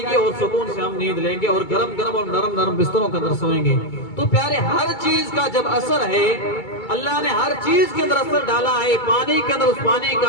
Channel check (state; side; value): late; right; 2.2 ms